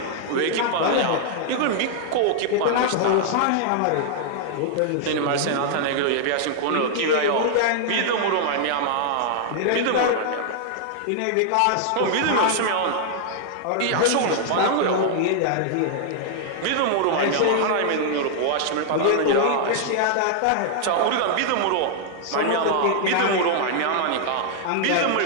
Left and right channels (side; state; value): both; different; correlation -0.01